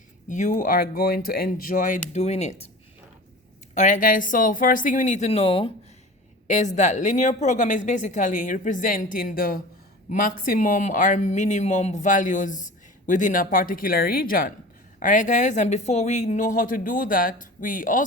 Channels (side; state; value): both; normal; correlation 0.37